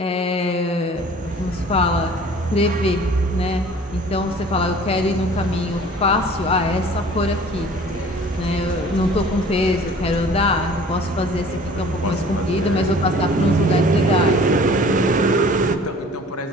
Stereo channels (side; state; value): both; normal; correlation 0.48